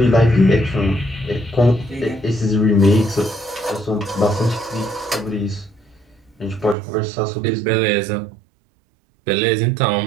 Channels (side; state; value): left; drops out; at 6.8 s